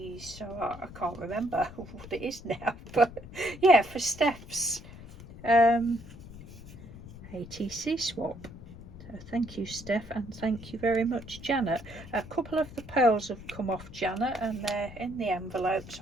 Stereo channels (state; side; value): noise; left; rumble, 15 dB below the sound